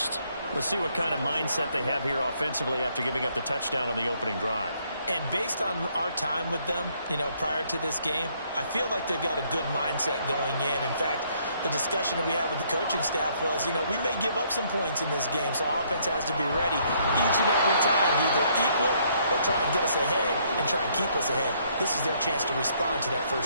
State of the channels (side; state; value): both; inverted; correlation -0.68